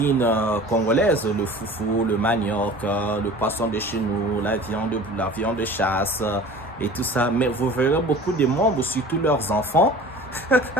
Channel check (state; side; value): normal; both; correlation 0.42